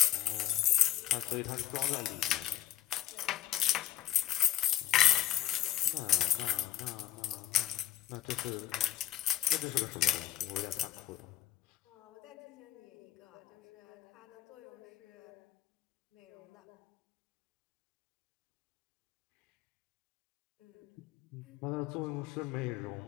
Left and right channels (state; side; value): quieter; right; 13.1 dB